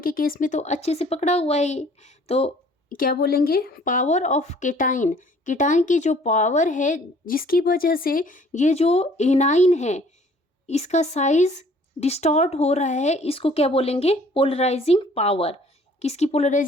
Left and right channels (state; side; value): normal; both; correlation 0.56